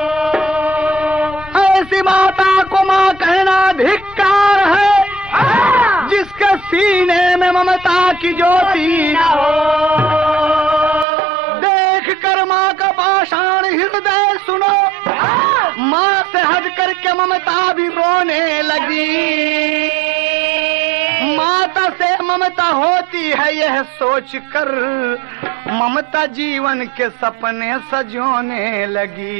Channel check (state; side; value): drops out; left; at 11.1 s